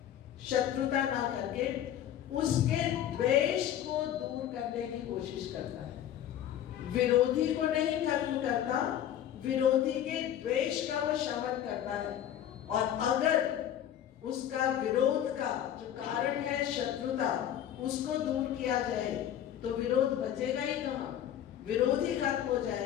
शत्रुता ना करके उसके द्वेष को दूर करने की कोशिश करता है। विरोधी को नहीं खत्म करता, विरोधी के द्वेष का वो शमन करता है। और अगर उसका विरोध का जो कारण है शत्रुता, उसको दूर किया जाए तो विरोध बचेगा ही कहाँ, विरोध ही खत्म हो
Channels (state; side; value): quieter; right; 10.8 dB